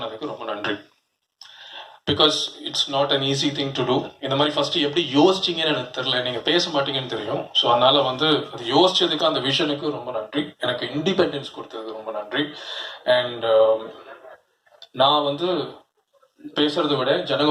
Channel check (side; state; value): both; identical; correlation 1.00